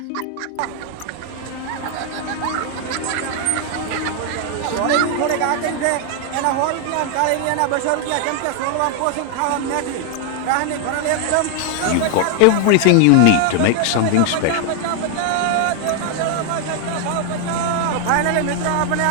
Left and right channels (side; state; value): both; different; correlation 0.00